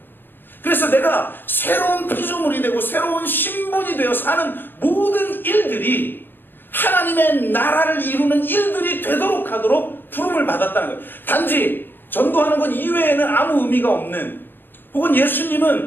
그래서 내가 새로운 피조물이 되고 새로운 신분이 되어 사는 모든 일들이 하나님의 나라를 이루는 일들이 되도록 하도록 부름을 받았다는 거예요. 단지 전도하는 것 이외에는 아무 의미가 없는, 혹은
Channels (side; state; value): right; late; 0.097 ms